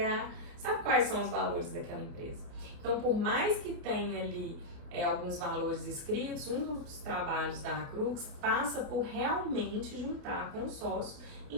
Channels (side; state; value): left; late; 28 ms